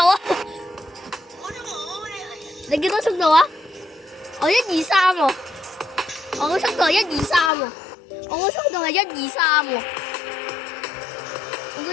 啊？你幾多速度啊？我123喎，我個速度係123喎，我個速度係123喎，我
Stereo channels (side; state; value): right; drops out; at 7.5 s